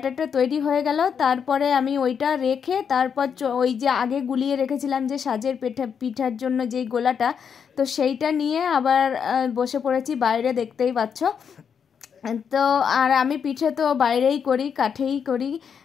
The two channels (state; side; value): quieter; right; 7.1 dB